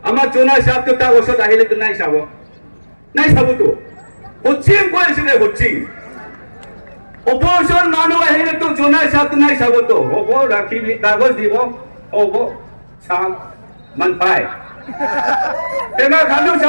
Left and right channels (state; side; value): inverted; both; correlation -1.00